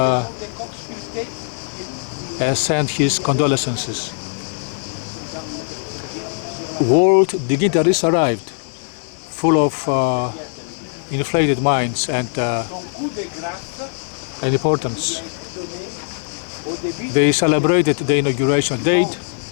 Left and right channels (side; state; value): right; silent; digital silence